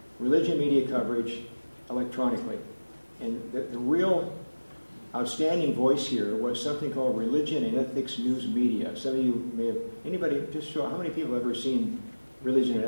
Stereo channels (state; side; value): inverted; both; correlation -1.00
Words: religion media coverage electronically. And the real outstanding voice here was something called Religion and Ethics News Media. Some of you may have, anybody, just show, how many people have ever seen Religion